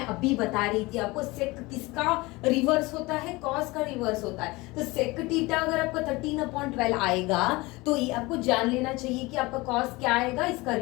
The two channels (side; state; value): right; quieter; 22.5 dB